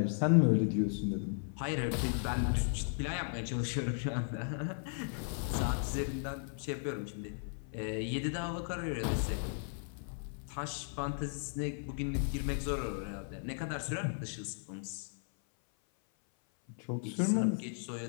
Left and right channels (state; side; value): silent; right; 54 dB below the other